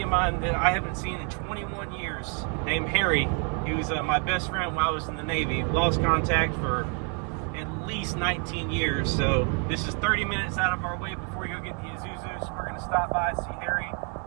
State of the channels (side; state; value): left; quieter; 39.2 dB